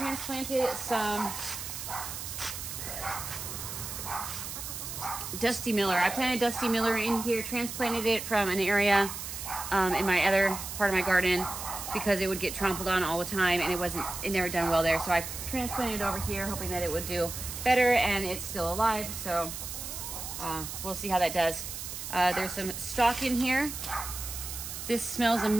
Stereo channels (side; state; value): right; noise; hiss, 7 dB below the sound